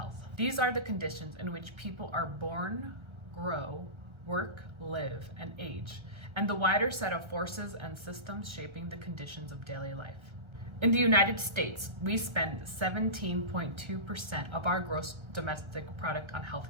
These are the conditions in which people are born, grow, work, live, and age, and the wider set of forces and systems shaping the conditions of daily life. In the United States, we spend 17.2% of our gross domestic product on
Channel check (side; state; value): left; late; 1.3 ms